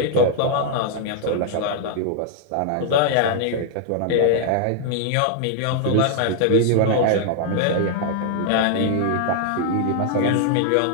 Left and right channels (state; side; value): different; both; correlation 0.00